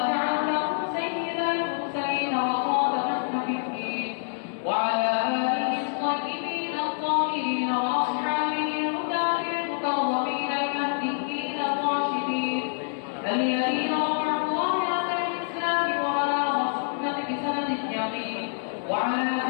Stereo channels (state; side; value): silent; right; 60 dB below the other